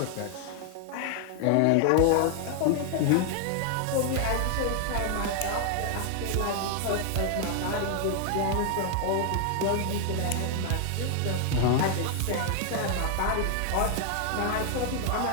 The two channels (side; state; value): both; different; correlation 0.00